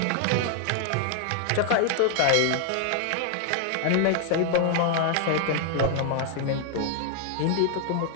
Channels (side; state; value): both; different; correlation 0.00